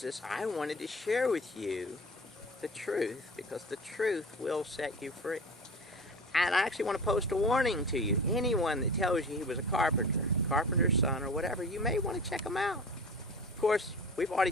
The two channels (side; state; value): both; normal; correlation 0.36